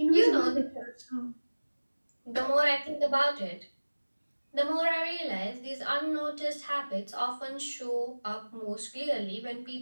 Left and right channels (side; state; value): both; inverted; correlation -1.00